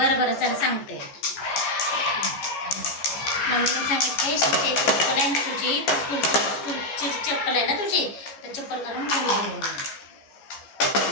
बरं चल सांगते. मम्मीने सांगितले श्रीषा चप्पल आहे ना तुझी स्कूलची चप्पल आहे ना तुझी तर चप्पल घालून घरी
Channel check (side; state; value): right; late; 14 ms